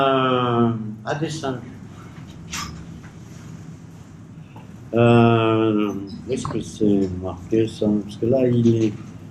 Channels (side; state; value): both; identical; correlation 1.00